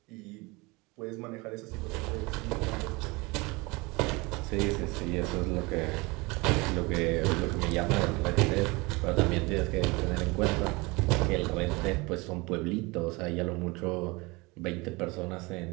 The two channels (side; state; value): left; quieter; 25.1 dB